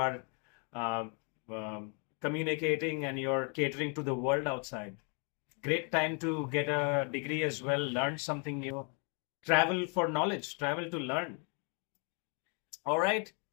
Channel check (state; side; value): quieter; right; 37.6 dB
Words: communicating and you're catering to the world outside. Great time to get a degree as well, learn something new, travel for knowledge, travel to learn. All right.